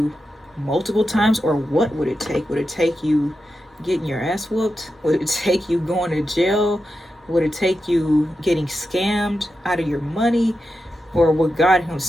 multiple times? Or what would it take? Would it take you getting your ass whooped? Would it take you going to jail? Would it take you getting scammed out of your money? Or would God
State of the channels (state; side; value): normal; both; correlation 0.89